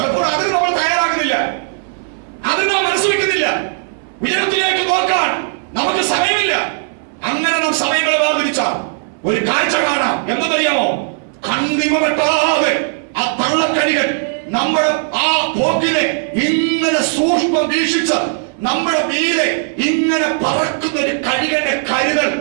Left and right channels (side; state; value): left; silent; 68 dB below the other